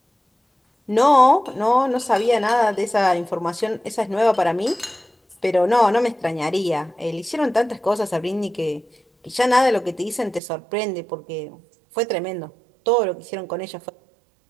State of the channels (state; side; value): drops out; left; at 10.4 s